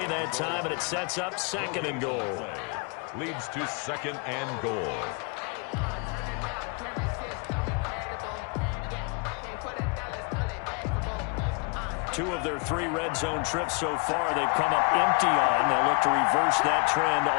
that time, and it sets up 2nd and goal. Leads to 2nd and goal. Two of their 3 red zone trips so far, they've come up empty on. They'll look to reverse that trend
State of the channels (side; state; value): right; quieter; 34.5 dB